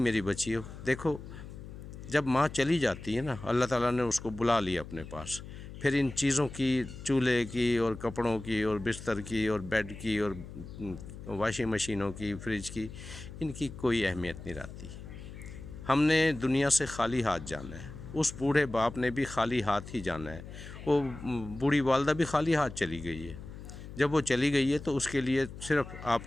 بچیوں، دیکھو، جب ماں چلی جاتی ہے نا، اللہ تعالیٰ نے اس کو بلا لیا اپنے پاس، پھر ان چیزوں کی، چولہے کی اور کپڑوں کی اور بستر کی اور بیڈ کی اور واشنگ مشینوں کی، فریج کی، ان کی کوئی اہمیت نہیں رہتی۔ ہم نے دنیا سے خالی ہاتھ جانا ہے، اس بوڑھے باپ نے بھی خالی ہاتھ ہی جانا ہے، وہ بوڑھی والدہ بھی خالی ہاتھ چلی گئی ہے۔ جب وہ چلی گئی ہے تو اس کے لیے صرف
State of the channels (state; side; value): noise; left; hum, 13 dB below the sound